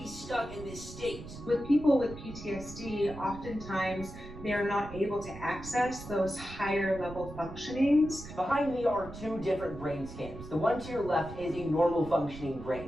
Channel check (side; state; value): right; noise; rumble, 13 dB below the sound